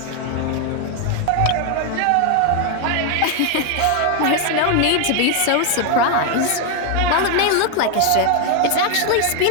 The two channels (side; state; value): both; different; correlation 0.01